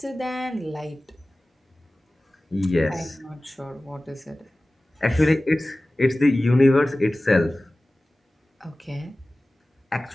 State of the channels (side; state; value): both; normal; correlation 0.97